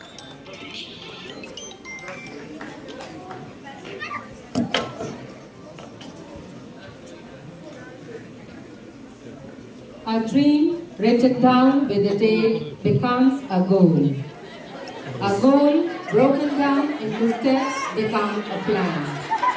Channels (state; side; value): identical; both; correlation 1.00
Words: A dream written down with a date becomes a goal. A goal broken down into steps becomes a plan.